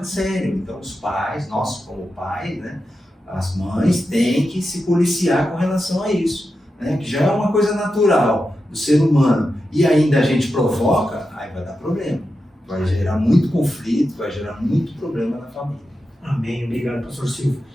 sério. Então, os pais, nós como pais, né, as mães têm que se policiar com relação a isso, né? Que já é uma coisa natural do ser humano, e ainda a gente provoca, aí vai dar problema. Vai gerar muito conflito, vai gerar muito problema na família. Amém. Obrigado, pastor Silvio.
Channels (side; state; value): both; normal; correlation 0.90